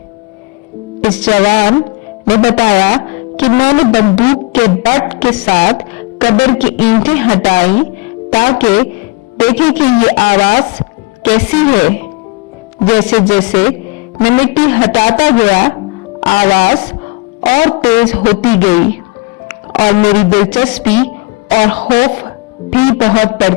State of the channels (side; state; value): right; quieter; 26.0 dB